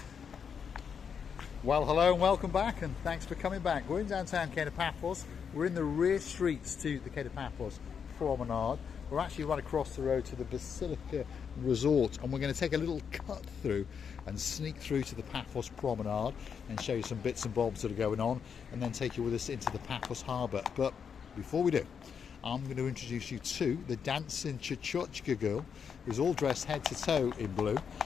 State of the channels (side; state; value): right; quieter; 6.9 dB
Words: Well, hello and welcome back, and thanks for coming back. We're in downtown Paphos. We're in the rear streets to the Paphos Promenade. We're actually right across the road to the Basilica Resort, and we're going to take a little cut through and sneak through to the Paphos Promenade and show you some bits and bobs that are going on, and then take you with us into the Paphos Harbour. But before we do, I'm going to introduce you to the dancing Chuchotchka girl, who's all dressed head to toe in blue,